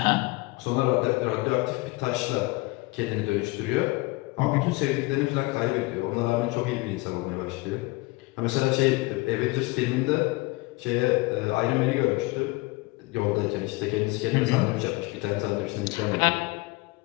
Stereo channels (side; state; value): right; quieter; 23.4 dB